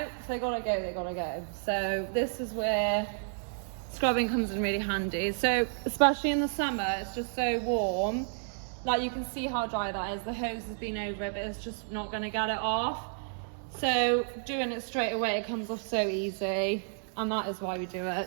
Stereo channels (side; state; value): left; silent; digital silence